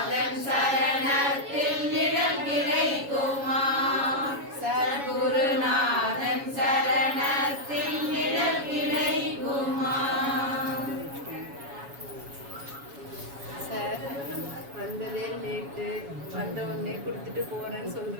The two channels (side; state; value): left; late; 7.2 ms